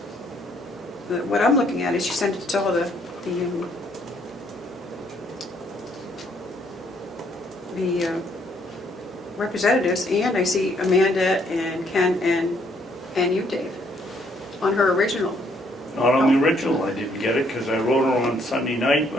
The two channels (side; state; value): both; normal; correlation 0.68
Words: what I'm looking at is she sent it to all the representatives, and I see Amanda and Ken and you, Dave. on her original. Not on the original, I didn't get it, because I wrote her on Sunday night